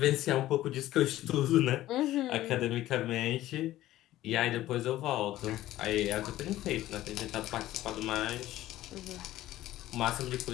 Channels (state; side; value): quieter; right; 14.9 dB